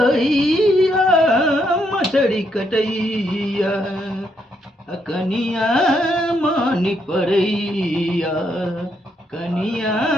मछड़ी कटैया कनिया मानी पड़ैया कनिया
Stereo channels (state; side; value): normal; both; correlation 0.76